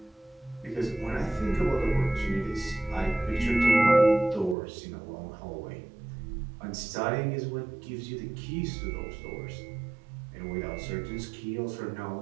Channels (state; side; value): drops out; left; at 4.5 s